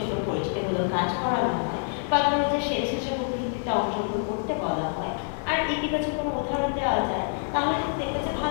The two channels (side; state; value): right; silent; 60 dB below the other